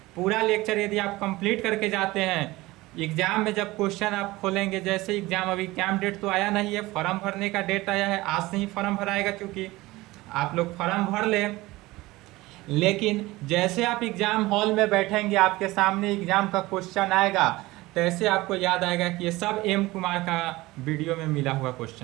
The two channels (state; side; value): quieter; left; 19.7 dB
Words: पूरा लेक्चर यदि आप कंप्लीट करके जाते हैं, एग्जाम में जब क्वेश्चन आप खोलेंगे, जैसे एग्जाम, अभी एग्जाम डेट तो आया नहीं है, फॉर्म भरने का डेट आया है, आज से ही फॉर्म भराएगा, क्योंकि आप लोग फॉर्म भर लें। लेकिन जैसे आप एग्जाम हॉल में बैठेंगे, आपके सामने एग्जाम का क्वेश्चन आएगा, तैसे आपको याद आएगा कि ये सब एम कुमार का वीडियो में मिला हुआ